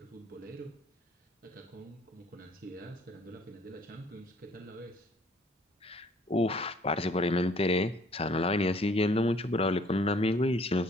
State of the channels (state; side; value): normal; both; correlation 0.58